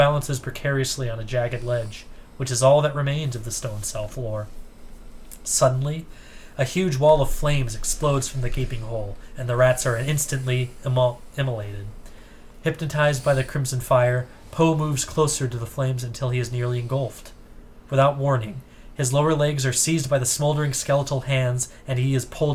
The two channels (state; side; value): identical; both; correlation 1.00